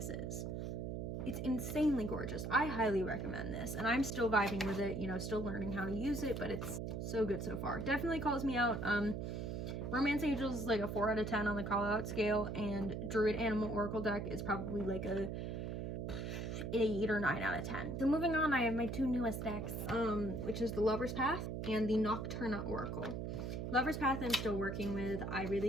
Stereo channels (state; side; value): noise; right; hum, 4 dB below the sound